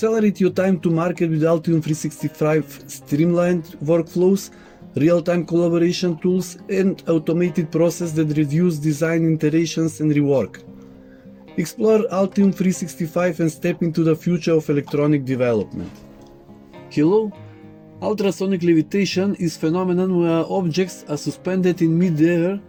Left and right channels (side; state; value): both; identical; correlation 1.00